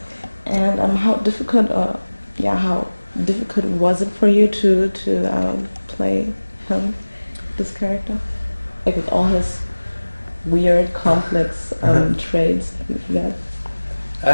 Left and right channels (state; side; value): inverted; both; correlation -1.00